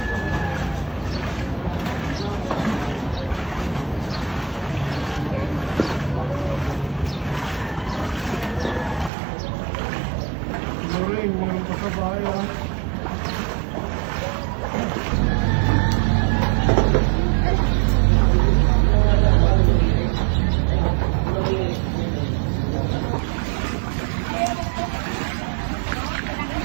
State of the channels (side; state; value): left; drops out; at 9.1 s